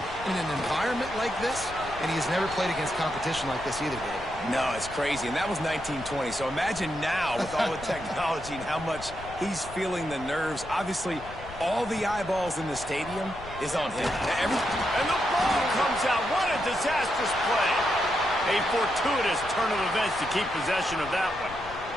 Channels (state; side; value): noise; left; rumble, 15 dB below the sound